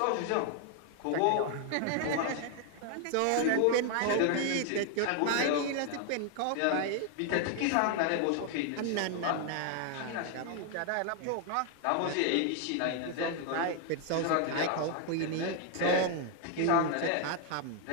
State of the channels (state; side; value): different; both; correlation 0.00